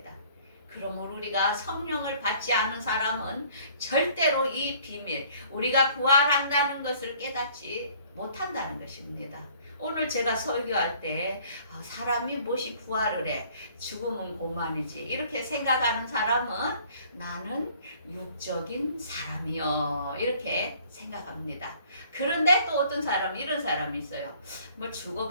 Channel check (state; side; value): inverted; both; correlation -0.56